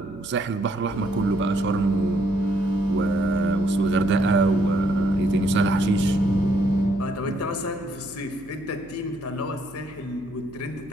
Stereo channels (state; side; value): noise; right; hum, 24 dB below the sound